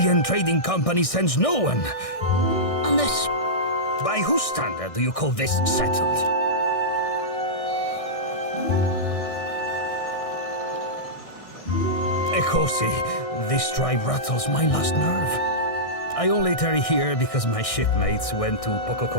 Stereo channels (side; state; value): right; late; 1.6 ms